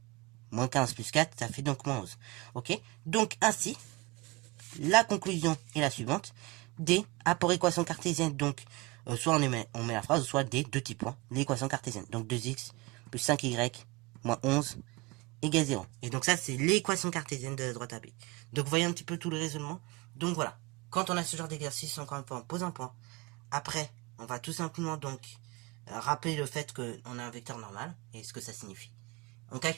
Moins 15 plus 4, ça fait donc moins 11. Ok. Donc ainsi, la conclusion est la suivante. D a pour équation cartésienne, donc soit on met la phrase, soit D, deux petits points, l'équation cartésienne. Donc 2x plus 5y moins 11 égale 0. Et donc ça, c'est l'équation cartésienne de la droite AB. Donc vous voyez un petit peu tout le raisonnement. Donc voilà, quand on a ce genre d'exercice, encore une fois, on pose un point. Après, on va tout simplement donc rappeler le fait qu'on a un vecteur normal et ce que ça signifie. On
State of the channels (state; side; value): quieter; left; 23.9 dB